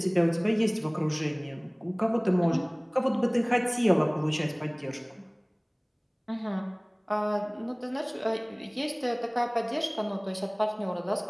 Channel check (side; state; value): both; identical; correlation 1.00